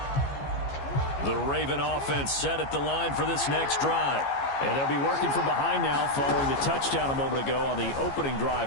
The Raven offense set at the line for this next drive. And they'll be working from behind now following the touchdown a moment ago on the opening drive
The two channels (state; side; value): late; right; 15 ms